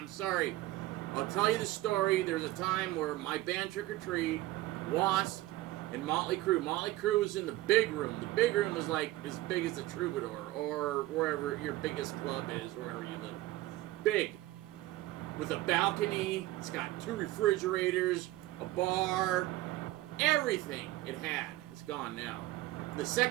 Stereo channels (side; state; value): left; quieter; 17.0 dB